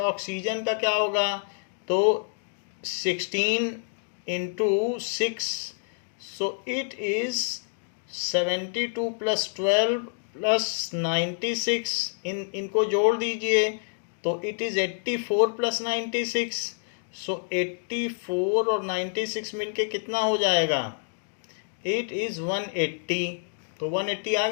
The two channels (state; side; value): silent; right; digital silence